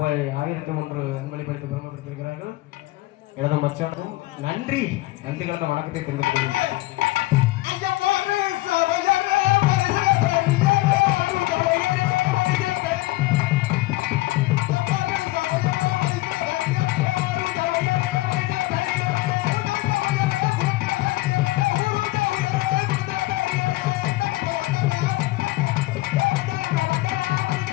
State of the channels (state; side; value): quieter; right; 19.1 dB